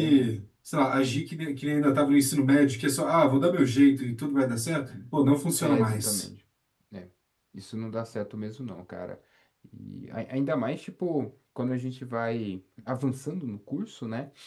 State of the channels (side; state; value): both; identical; correlation 1.00